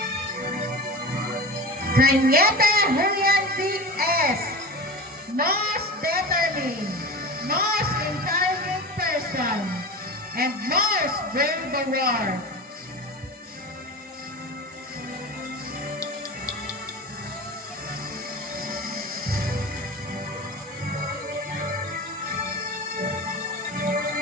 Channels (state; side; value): normal; both; correlation 0.30